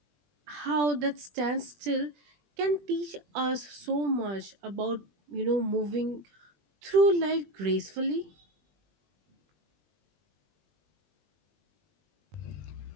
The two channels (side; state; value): left; late; 20 ms